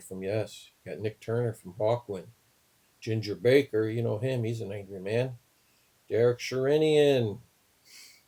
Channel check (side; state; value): both; identical; correlation 1.00